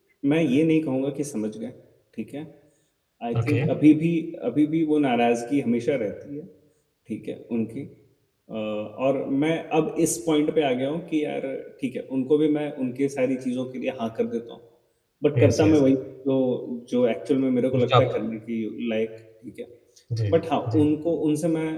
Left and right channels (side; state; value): both; identical; correlation 1.00